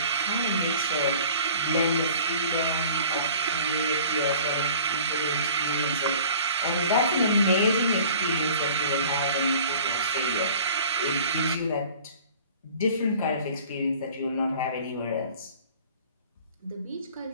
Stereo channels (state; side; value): inverted; both; correlation -0.47